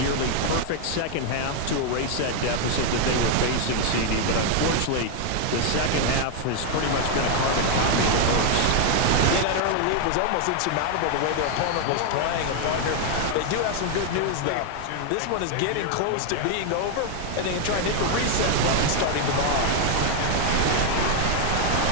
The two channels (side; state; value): both; different; correlation 0.00